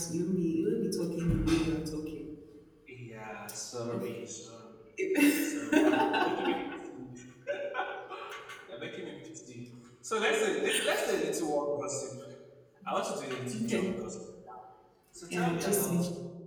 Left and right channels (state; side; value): identical; both; correlation 1.00